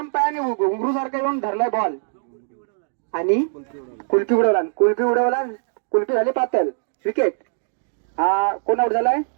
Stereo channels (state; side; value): silent; left; digital silence